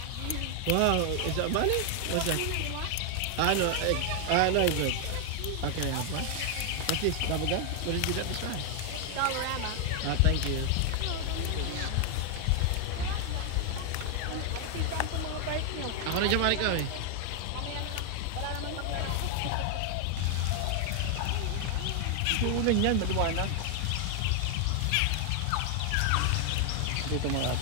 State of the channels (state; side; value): different; both; correlation 0.00